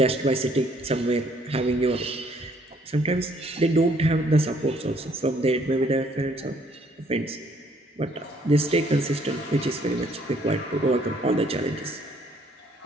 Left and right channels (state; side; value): normal; both; correlation 0.64